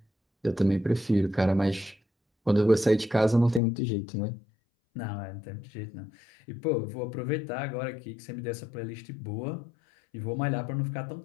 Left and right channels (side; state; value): right; drops out; at 3.6 s